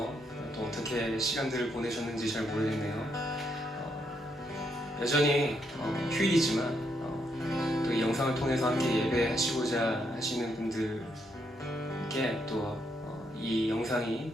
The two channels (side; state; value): both; normal; correlation 0.77